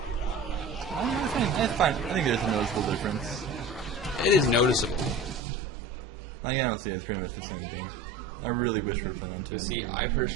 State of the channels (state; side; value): drops out; left; at 5.4 s